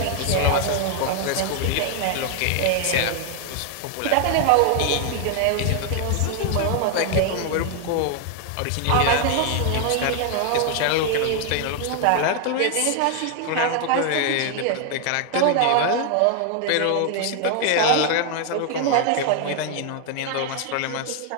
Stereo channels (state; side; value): different; both; correlation 0.00